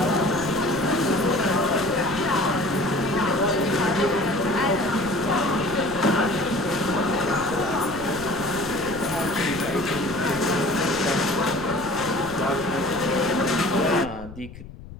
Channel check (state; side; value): noise; left; rumble, 16 dB below the sound